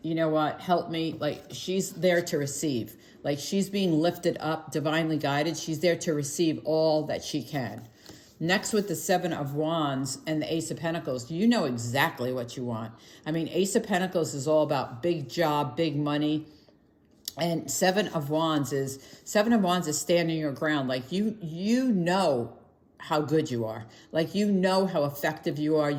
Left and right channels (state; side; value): identical; both; correlation 1.00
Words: you know what, help me. Like, she's there to receive. Like, she's being lifted up, divinely guided. She's there to receive all that she can. Next, with the Seven of Wands and the Ace of Pentacles, you know exactly what you want. I mean, Ace of Pentacles is all about big job, big money. And Seven of Wands is standing your ground. Like, you know how good you are. Like, you know how effective you are.